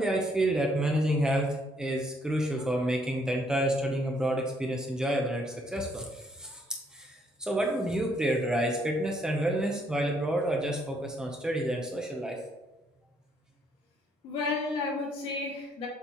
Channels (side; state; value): both; normal; correlation 0.69